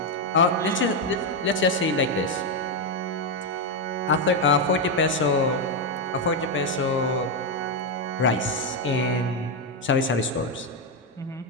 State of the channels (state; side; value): normal; both; correlation 0.04